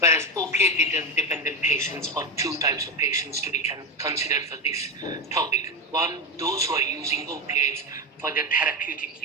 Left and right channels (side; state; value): both; normal; correlation 0.14